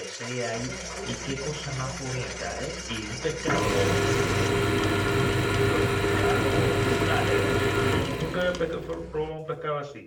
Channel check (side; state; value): both; identical; correlation 1.00